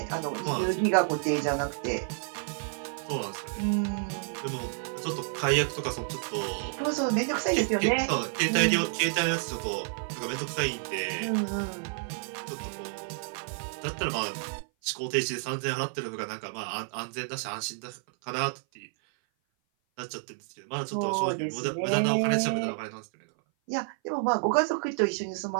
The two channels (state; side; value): silent; left; 56 dB below the other